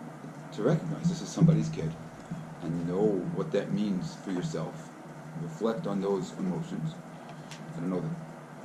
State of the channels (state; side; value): identical; both; correlation 1.00